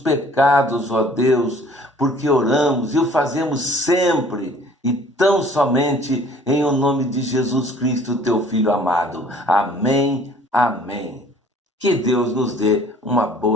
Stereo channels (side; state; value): both; normal; correlation 0.53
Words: ó Deus, porque oramos e o fazemos sempre e tão somente em o nome de Jesus Cristo, teu Filho amado. Amém, amém. Que Deus nos dê uma